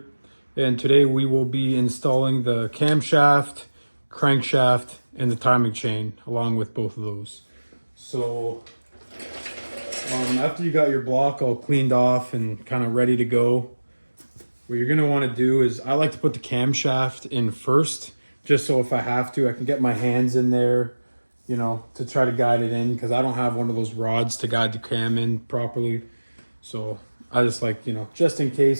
and today we will be installing the camshaft, crankshaft, and the timing chain along with both of those. So after you got your block all cleaned off and kind of ready to go, what you're going to want to do is, I like to put the camshaft in first, just so if I have to, I can get my hands in there, you know, to try to guide it in, because I don't have one of those rods to guide the cam in properly. So I just like, you know, just in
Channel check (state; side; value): inverted; both; correlation -1.00